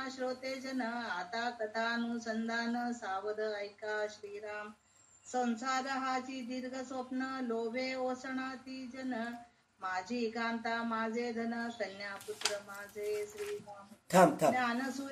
श्रोते जन, आता कथानुसंधान, सावध ऐका श्रीराम. संसार हाची दीर्घ स्वप्न, लोभे ओसणाती जन, माझी कांता माझे धन, कन्या पुत्र माझे श्रीराम.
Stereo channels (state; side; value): identical; both; correlation 1.00